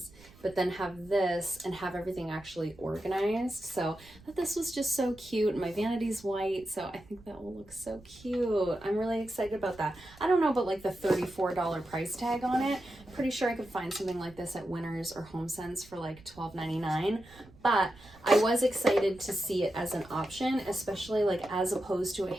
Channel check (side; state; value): right; noise; rumble, 23 dB below the sound